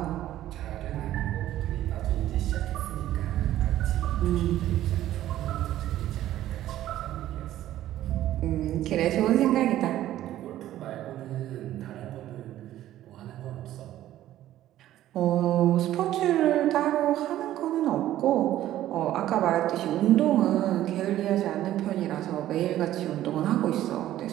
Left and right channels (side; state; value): left; quieter; 13.3 dB